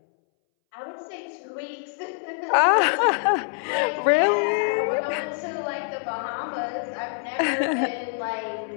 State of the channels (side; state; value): right; silent; 62 dB below the other